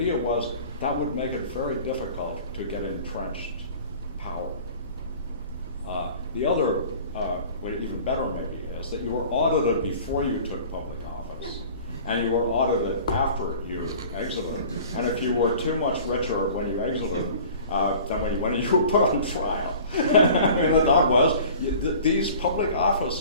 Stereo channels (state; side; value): inverted; both; correlation -0.45